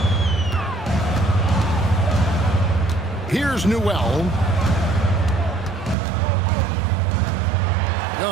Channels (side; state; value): left; drops out; at 6.0 s